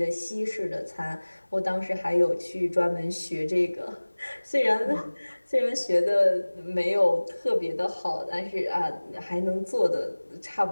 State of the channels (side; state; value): both; inverted; correlation -1.00